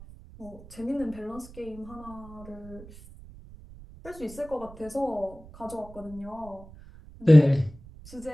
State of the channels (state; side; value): noise; right; rumble, 19 dB below the sound